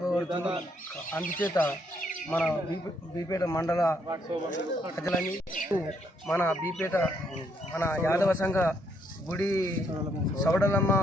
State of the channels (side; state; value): both; normal; correlation 0.73